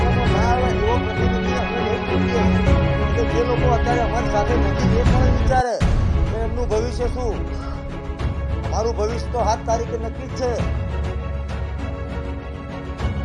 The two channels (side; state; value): both; identical; correlation 1.00